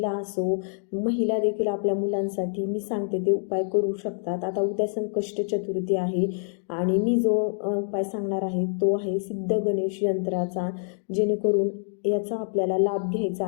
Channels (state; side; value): silent; right; digital silence